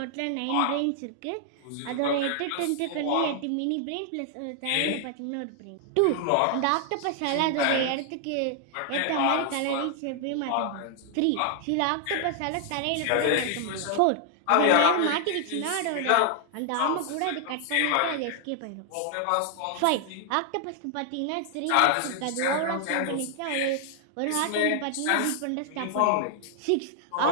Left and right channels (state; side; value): different; both; correlation 0.00